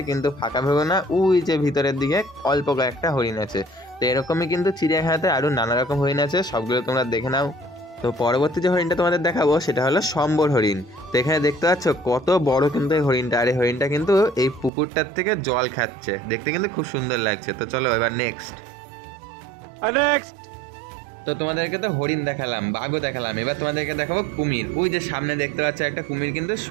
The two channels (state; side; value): drops out; left; at 14.7 s